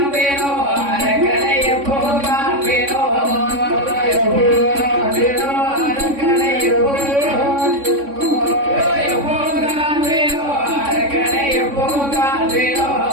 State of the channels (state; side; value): late; left; 3.6 ms